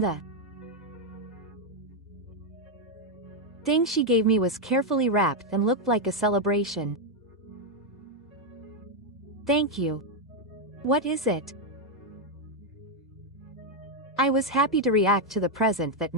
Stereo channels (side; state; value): both; normal; correlation 0.02